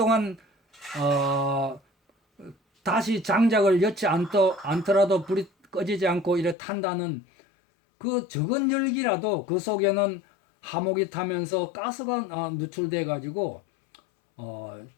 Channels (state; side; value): drops out; right; at 6.6 s